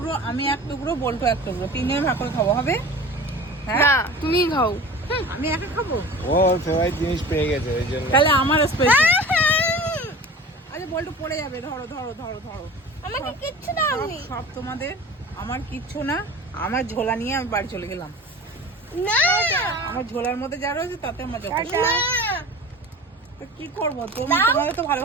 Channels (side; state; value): both; normal; correlation 0.38